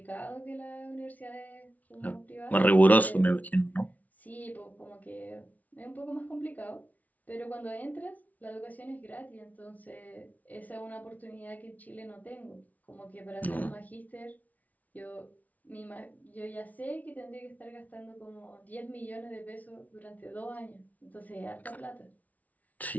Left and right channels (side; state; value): right; late; 0.073 ms